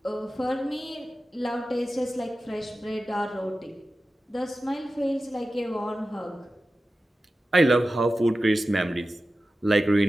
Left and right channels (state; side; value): normal; both; correlation 0.94